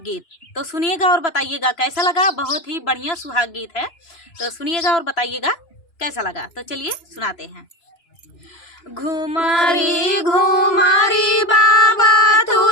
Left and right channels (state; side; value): late; right; 3.0 ms